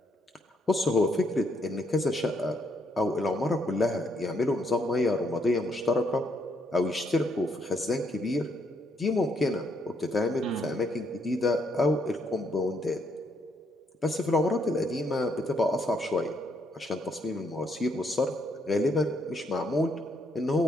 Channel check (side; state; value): both; normal; correlation 0.73